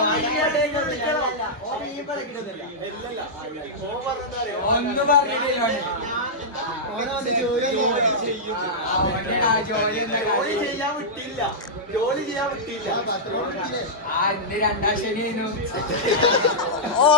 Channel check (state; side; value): normal; both; correlation -0.11